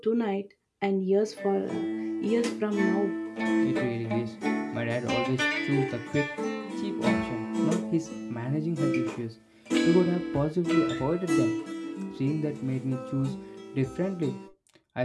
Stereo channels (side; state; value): both; identical; correlation 1.00